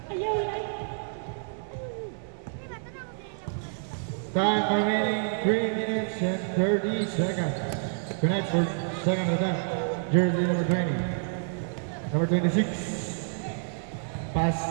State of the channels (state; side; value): silent; left; 59 dB below the other